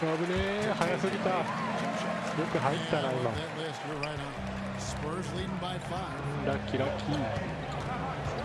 Spurs leading by 5. Lucky.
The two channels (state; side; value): identical; both; correlation 1.00